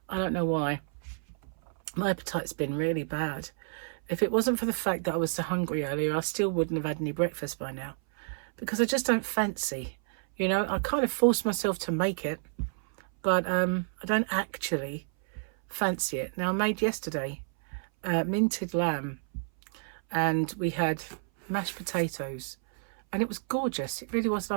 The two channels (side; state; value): left; silent; 58 dB below the other